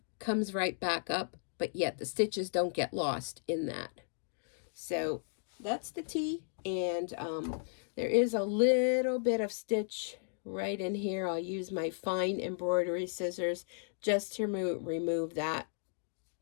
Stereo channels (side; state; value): right; silent; digital silence